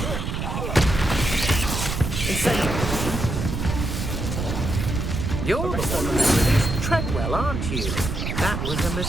You're the one who introduced Treadwell, aren't you? That was a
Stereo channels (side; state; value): right; noise; rumble, 3 dB below the sound